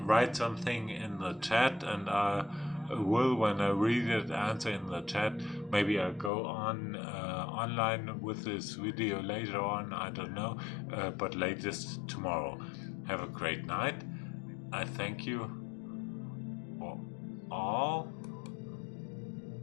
something in the chat, and I will, when I read it, answer in the chat. Maybe I'll go on online with this video later on, I don't know, but latest tomorrow. Have a great night. I thank you for all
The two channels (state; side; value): drops out; right; at 6.3 s